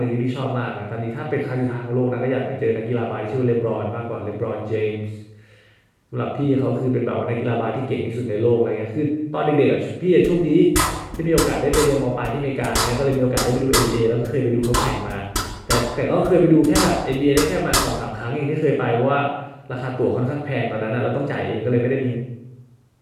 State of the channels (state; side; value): identical; both; correlation 1.00